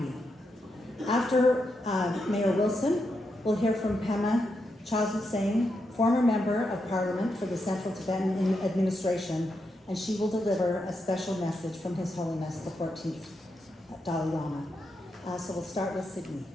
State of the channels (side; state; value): both; normal; correlation 0.84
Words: After Mayor Wilson, we'll hear from Pema Chazuseng, former member of Parliament for the Central Tibetan Administration, and she will deliver a special message from His Holiness the 14th Dalai Lama. So we'll start with Sydney.